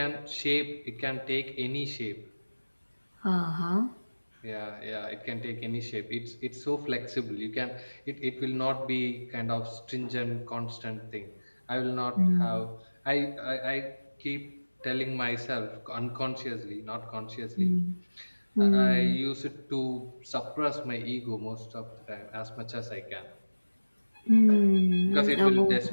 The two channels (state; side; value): inverted; both; correlation -1.00